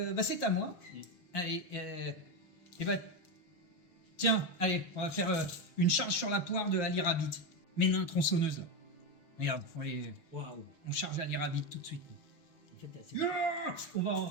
bah, c'est à moi. Mm. Allez, et bah, tiens, allez, on va faire une charge sur la poire de Ali Rabbit. Mes nains tronçonneuses. Regarde, Waouh. on charge Ali Rabbit tout de suite. En fait, c'est... On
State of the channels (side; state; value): right; late; 6.2 ms